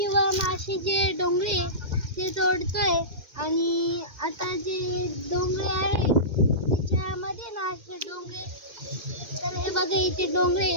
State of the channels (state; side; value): late; left; 2.0 ms